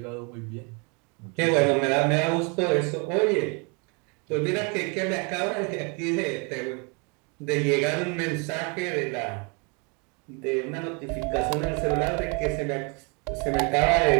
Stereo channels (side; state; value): left; quieter; 32.9 dB